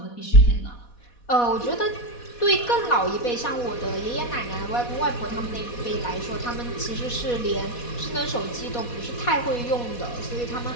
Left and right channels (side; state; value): right; late; 4.1 ms